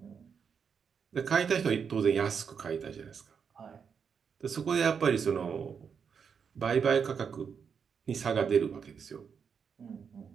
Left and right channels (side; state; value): left; quieter; 6.6 dB